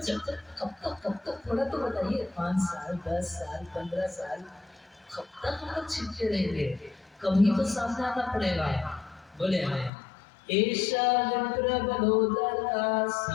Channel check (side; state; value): right; drops out; at 9.9 s